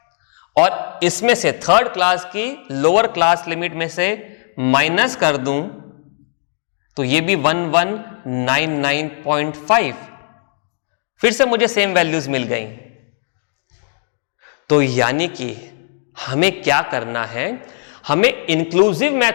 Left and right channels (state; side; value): silent; right; digital silence